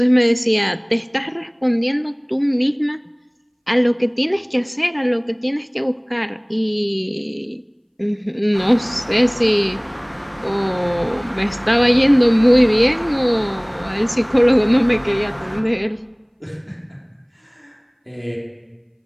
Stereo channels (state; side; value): identical; both; correlation 1.00